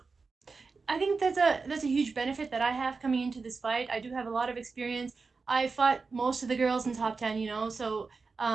I think that's a huge benefit that I have coming into this fight. I do have a lot of experience. I fought most of the girls in top 10, so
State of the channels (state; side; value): quieter; left; 4.4 dB